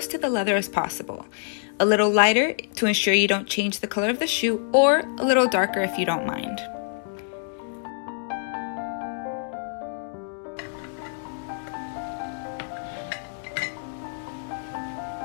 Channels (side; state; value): right; silent; digital silence